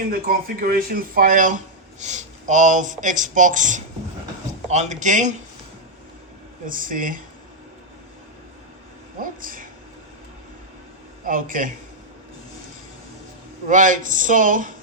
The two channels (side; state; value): both; normal; correlation -0.03